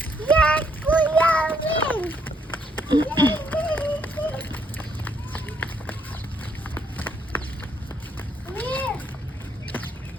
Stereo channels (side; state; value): both; normal; correlation 0.72